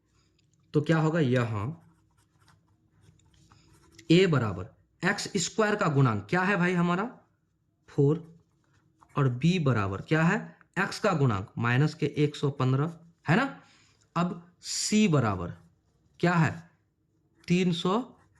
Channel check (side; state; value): both; identical; correlation 1.00